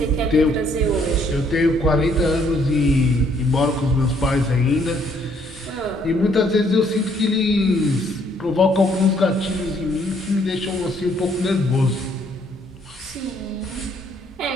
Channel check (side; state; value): both; normal; correlation 0.67